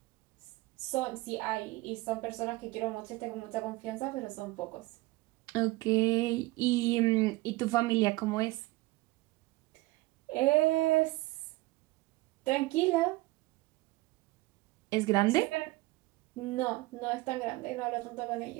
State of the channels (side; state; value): left; quieter; 20.4 dB